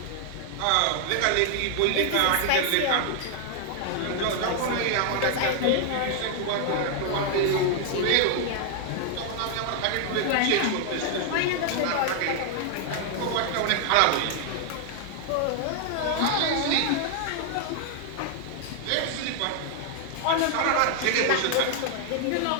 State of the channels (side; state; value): both; different; correlation 0.00